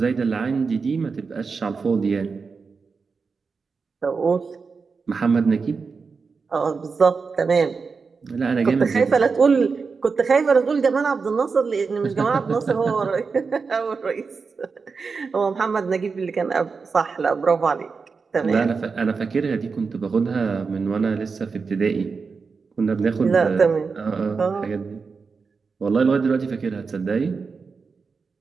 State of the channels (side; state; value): left; quieter; 4.9 dB